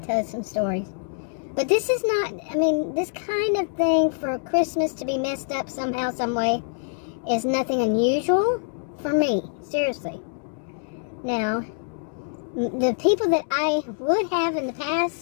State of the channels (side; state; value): right; silent; digital silence